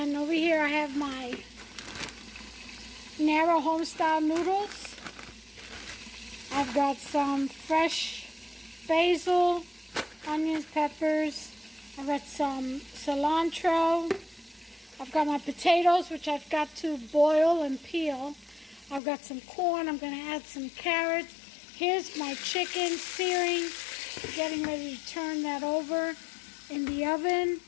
over here I have my narrow home style noodles. I've got some fresh basil, onions, peppers. I've got some cilantro. I've got my potatoes, which I've got to boil and peel. I've got some corn. I'm going to add some carrots. Here's my chicken searing, getting ready to turn that over in the oven.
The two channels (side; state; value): right; drops out; at 19.0 s